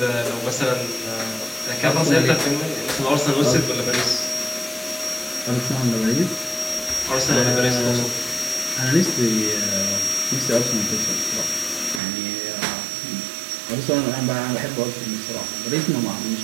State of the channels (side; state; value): left; drops out; at 12.0 s